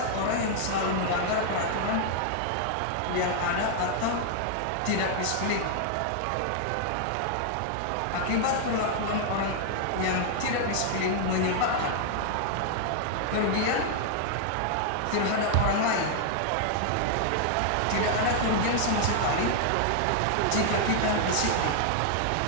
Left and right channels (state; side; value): different; both; correlation 0.00